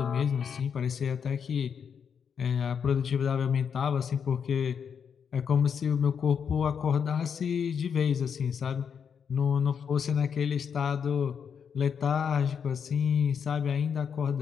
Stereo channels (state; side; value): quieter; right; 7.1 dB